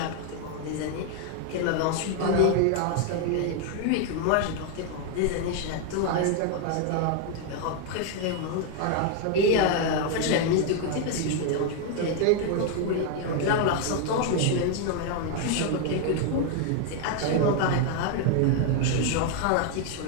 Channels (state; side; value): different; both; correlation 0.00